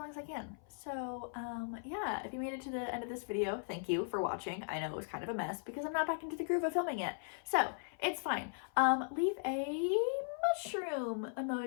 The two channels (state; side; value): silent; right; 52 dB below the other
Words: as I can. So yeah, if you made it to the end of this video, thank you for watching. I know it was kind of a mess because I'm not back into the groove of filming yet, so it's fine. Leave a mushroom